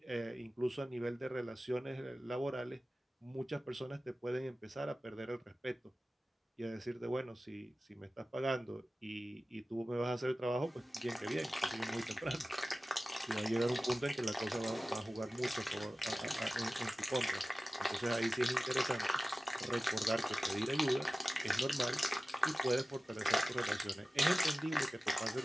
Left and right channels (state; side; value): normal; both; correlation 0.96